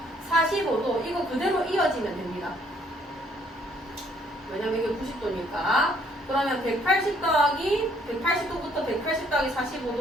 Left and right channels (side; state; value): both; normal; correlation 0.64